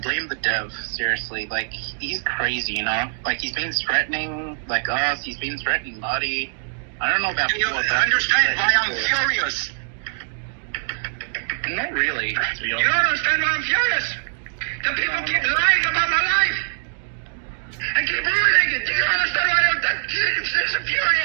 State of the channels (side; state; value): left; silent; digital silence